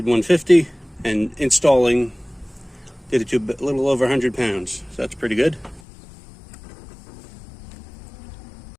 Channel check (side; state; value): right; drops out; at 5.8 s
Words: 150, and installing did it to a little over 100 pounds. So that's pretty good.